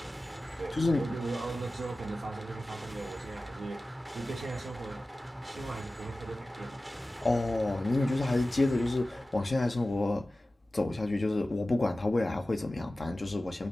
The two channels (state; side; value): normal; both; correlation 0.96